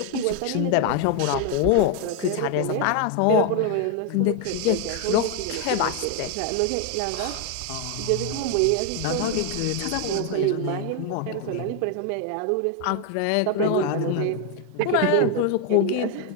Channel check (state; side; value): different; both; correlation 0.01